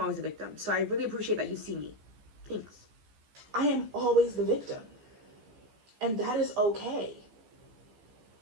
a victim. So I really appreciate that you see me. Thanks. I am always the victim. And that is okay.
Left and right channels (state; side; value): late; left; 14 ms